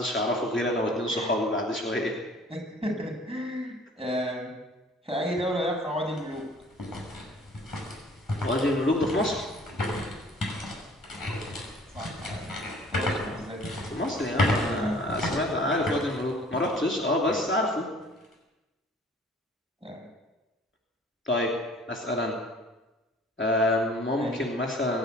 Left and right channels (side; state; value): both; normal; correlation 0.51